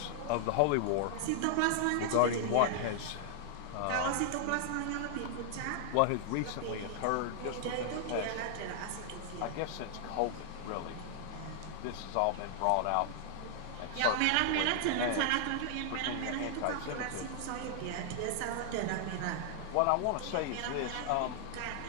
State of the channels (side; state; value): both; different; correlation 0.00